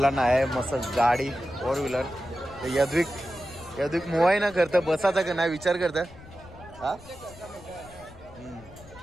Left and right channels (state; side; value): noise; left; rumble, 20 dB below the sound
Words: आहे मस्त गाडी 4 व्हीलर. यद्विक मोबाईल ना करतं बसायचा का नाही विचार करतं. हा